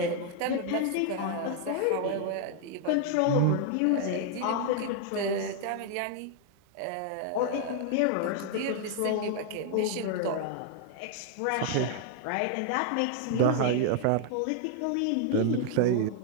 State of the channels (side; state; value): both; different; correlation 0.00